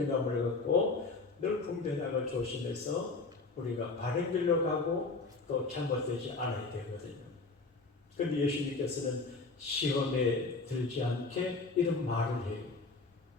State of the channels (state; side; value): quieter; right; 3.8 dB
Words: 갖고 늘 분별하고 조심해서 우리가 바른 길로 가고 또 잘못되지 않아야 되거든요. 그런데 예수님께서는 시험에 들지 않게 이런 말을 해요.